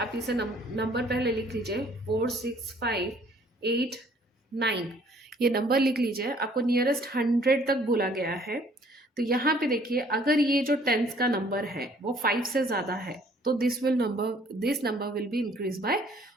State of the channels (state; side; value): normal; both; correlation 0.59